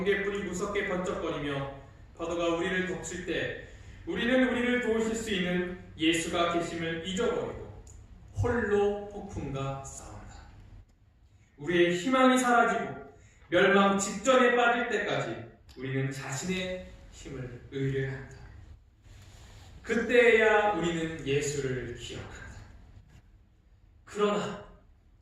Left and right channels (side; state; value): both; identical; correlation 1.00